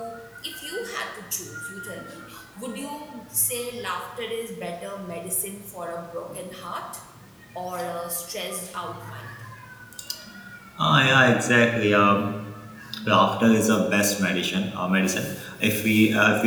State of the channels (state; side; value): identical; both; correlation 1.00